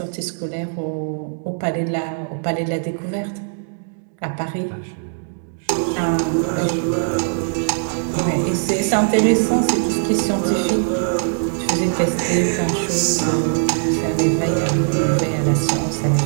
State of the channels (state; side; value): silent; left; digital silence